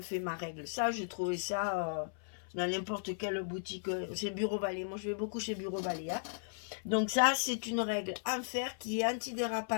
fait ma règle. Ça, j'ai trouvé ça dans n'importe quelle boutique. C'est Bureau Vallée. Moi, je vais beaucoup chez Bureau Vallée. Hein. Donc, ça, c'est une règle en fer qui est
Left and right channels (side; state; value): right; silent; 54 dB below the other